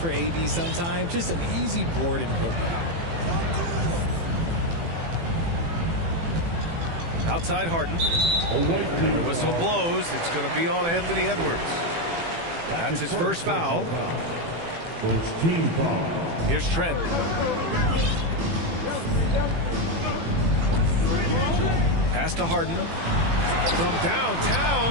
AD sometimes? Just an easy board and putback. Outside Harden. The whistle blows. It's going to be on Anthony Edwards. That's his first foul. First team foul. Here's Trent. Pass to Harden. From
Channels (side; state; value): left; late; 18 ms